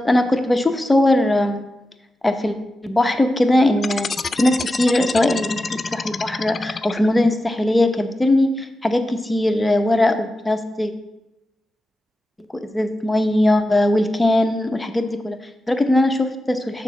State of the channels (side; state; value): both; normal; correlation 0.91